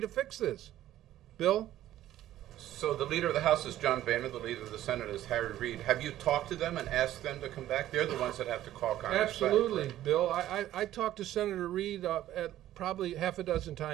fix this. Bill? So the leader of the House is John Boehner, the leader of the Senate is Harry Reid. Have you talked to them and asked them to come back? They're the ones that have to call Congress Absolutely, back. Bill. I talked to Senator Reid at probably half a dozen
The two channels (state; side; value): quieter; left; 13.3 dB